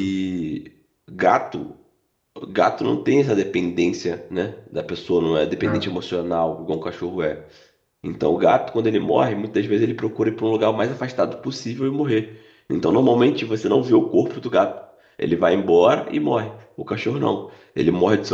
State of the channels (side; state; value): both; identical; correlation 1.00